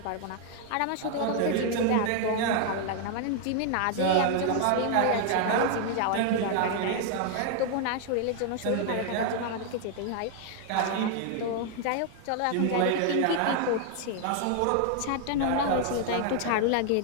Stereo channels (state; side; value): different; both; correlation 0.00